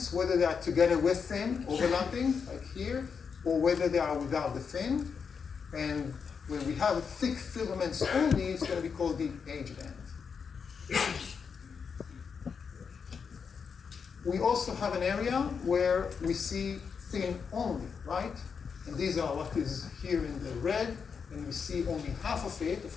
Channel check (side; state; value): right; quieter; 6.1 dB